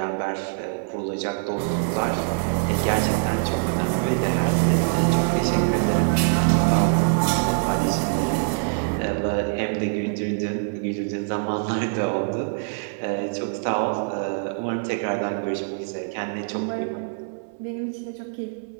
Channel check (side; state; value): left; silent; digital silence